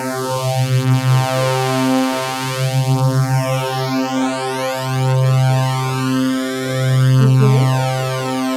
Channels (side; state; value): both; identical; correlation 1.00